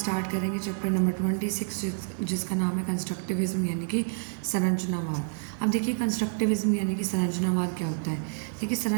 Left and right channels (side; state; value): left; silent; digital silence